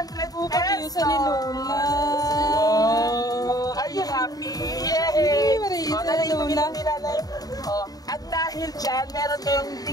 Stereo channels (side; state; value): right; late; 0.18 ms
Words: pesos. Sa ni Lola. Oh, are you happy? Yay! Oh, nanay, oh, at dahil dyan, meron kayong